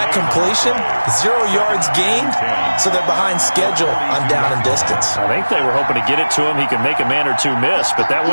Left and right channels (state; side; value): inverted; both; correlation -1.00